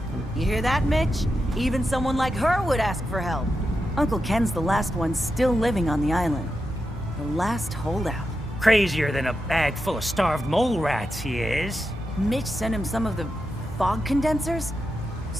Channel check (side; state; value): both; normal; correlation 0.88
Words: them. You hear that, Mitch? Even someone like her would ask for help. Uncle Ken's the last one still living on the island. The last holdout. Crazier than a bag full of starved mole rats, he is. Mitch sent him some of the fog condensers?